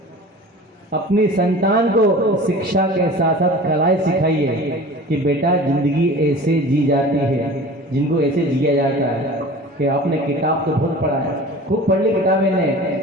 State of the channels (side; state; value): both; normal; correlation 0.39